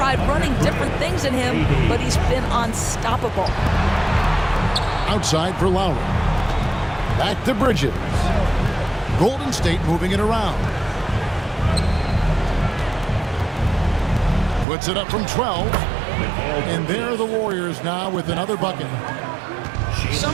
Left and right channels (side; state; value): left; drops out; at 14.7 s